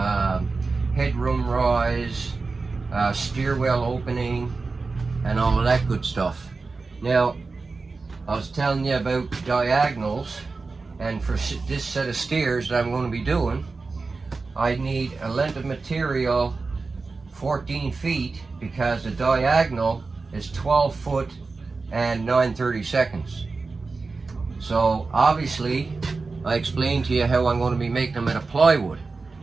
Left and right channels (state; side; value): quieter; left; 4.0 dB